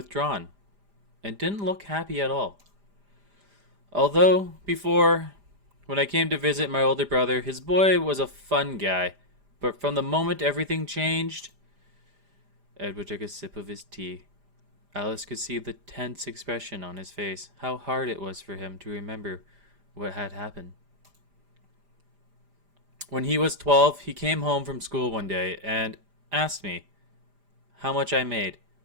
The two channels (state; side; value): late; left; 5.0 ms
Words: and didn't look happy at all. Although, before, when I came to visit my older brother, his boy was a fun guy. But from the moment everything changed, Edward took a sip of his tea. Alice could see the tense expression on his face, how hard it was for him to remember what had happened. When he was 12, he came home from school one day and asked me how much I made.